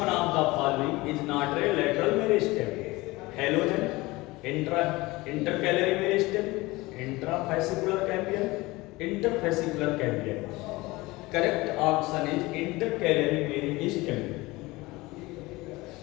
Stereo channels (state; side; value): quieter; right; 21.2 dB